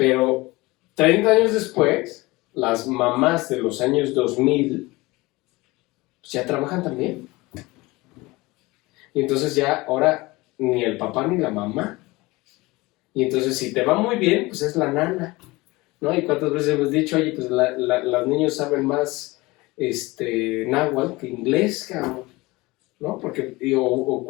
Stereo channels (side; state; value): right; quieter; 21.8 dB